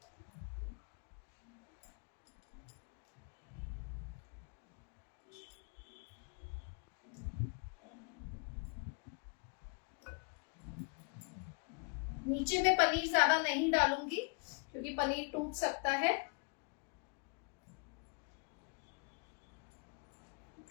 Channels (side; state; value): right; quieter; 35.5 dB